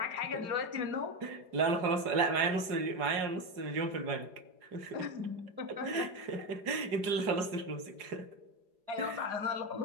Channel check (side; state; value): left; late; 4.8 ms